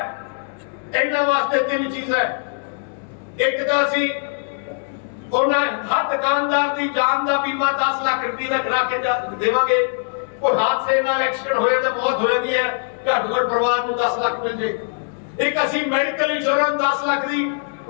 ਇਹਨਾਂ ਵਾਸਤੇ ਤਿੰਨ ਚੀਜ਼ਾਂ ਇੱਕ ਤਾਂ ਅਸੀਂ ਉਹਨਾਂ ਹਰ ਦੁਕਾਨਦਾਰ ਦੀ ਜਾਨ ਦਾ ਬੀਮਾ 10 ਲੱਖ ਰੁਪਏ ਦਾ ਕਰਾ ਕੇ ਦੇਵਾਂਗੇ और हादसे नाल एक्सीडेंट होए तो मौत हो जाती है घट घट परिवार को 10 लाख मिल जाए एक असि मेडिकल इंश्योरेंस 10 लाख दी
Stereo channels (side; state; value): right; silent; digital silence